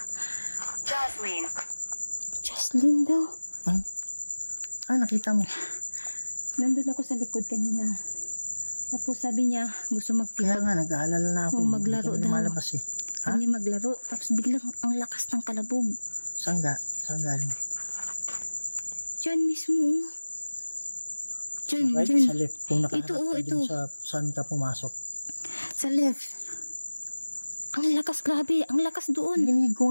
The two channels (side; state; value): both; inverted; correlation -1.00